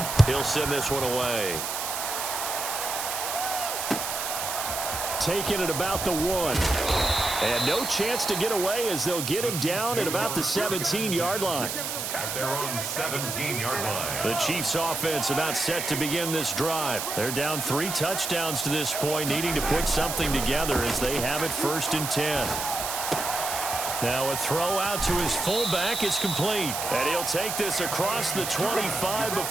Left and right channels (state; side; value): noise; right; hiss, 3 dB below the sound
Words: He'll send this one away. Taking it about the 1. And no chance to get away as they'll get him down at about the 17-yard line. At their own 17-yard line. The Chiefs offense about set to begin this drive. They're down 3 touchdowns to this point, needing to put something together as they have it 1st and 10. Now a throw out to his fullback is complete. And he'll take this across the 25